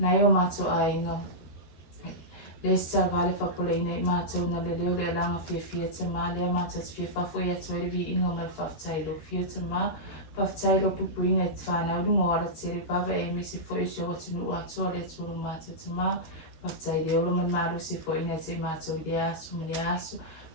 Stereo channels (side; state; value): right; late; 13 ms